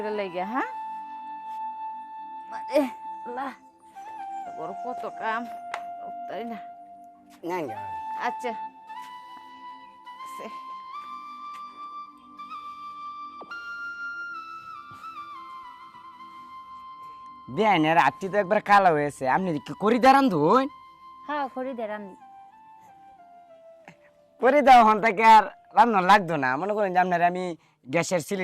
লাগিয়া, হ্যাঁ মারে আল্লাহ বড় কত কাম, তাই না? নেন গে ভাবি। আচ্ছা বিয়ানের আত্মি তো একবার কালো হয়েছে, আপনি কি করি দাঁড়ান ধুন? হ্যাঁ খড়ি দে রান্নি। করে দাও হন থেকে আর রান্না লাগতো না। মনে করেন যে আপনার আমি গ্যাসের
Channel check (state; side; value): identical; both; correlation 1.00